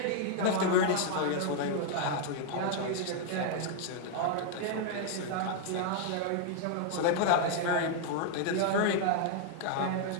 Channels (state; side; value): different; both; correlation -0.01